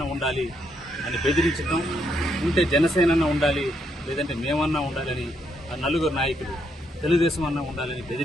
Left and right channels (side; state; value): both; normal; correlation 0.76